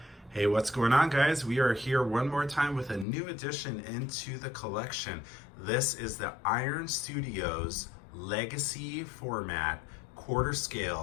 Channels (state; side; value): drops out; right; at 3.1 s